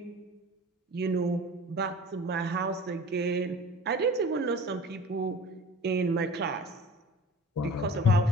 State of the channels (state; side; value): normal; both; correlation 0.41